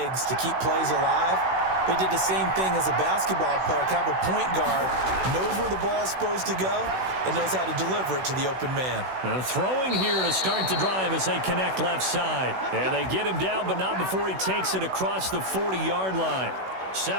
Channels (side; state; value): left; late; 16 ms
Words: to keep plays alive. But he did the same thing as a basketball player, kind of a point guard, knows where the ball is supposed to go, and knows how to deliver it to the open man. Throwing here to start the drive as they connect left side. And they get him down, but not before he takes it across the 40-yard line.